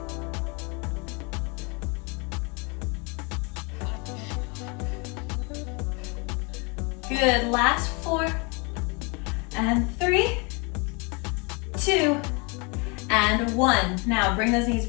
Good, last 4, and 3, 2, and 1. Now bring those knees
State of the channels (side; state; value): right; quieter; 31.1 dB